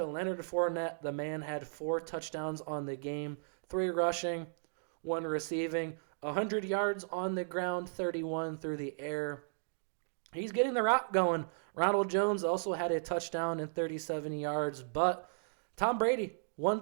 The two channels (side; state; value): left; silent; digital silence